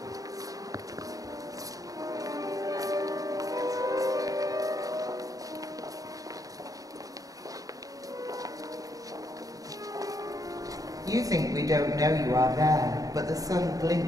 You think we don't know you are there, but the sun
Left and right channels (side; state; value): left; late; 0.17 ms